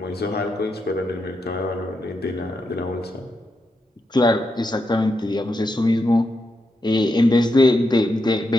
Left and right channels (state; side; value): normal; both; correlation 0.84